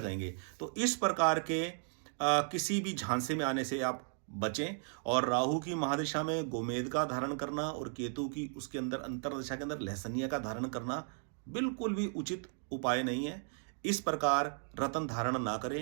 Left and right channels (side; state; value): left; silent; 54 dB below the other